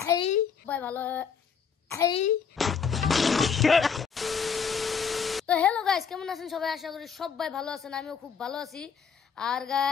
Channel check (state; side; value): quieter; right; 6.5 dB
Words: ভালো। তো হ্যালো গাইস, কেমন আছেন সবাই? আশা করি সবাই ভালো আছেন, আমিও খুব ভালো আছি। আর